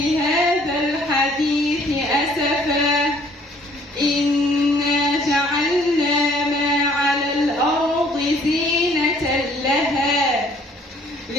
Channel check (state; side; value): normal; both; correlation 0.59